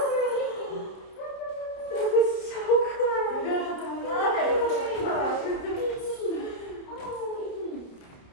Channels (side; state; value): right; late; 30 ms